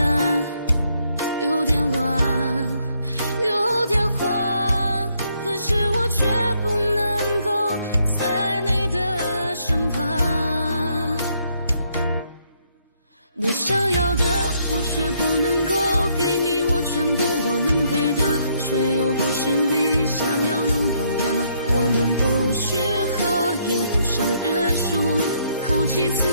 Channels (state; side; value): inverted; both; correlation -0.71